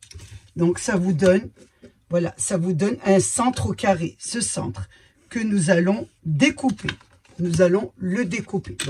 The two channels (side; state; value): both; identical; correlation 1.00